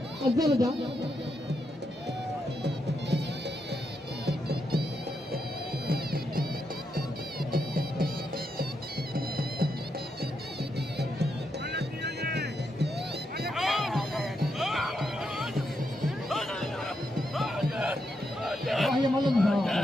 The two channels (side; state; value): both; normal; correlation 0.82